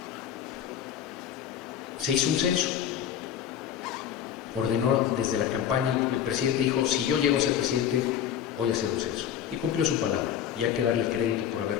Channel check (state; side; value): quieter; right; 9.6 dB